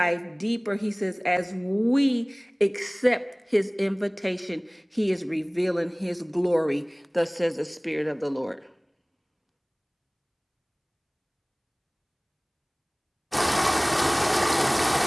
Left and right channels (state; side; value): identical; both; correlation 1.00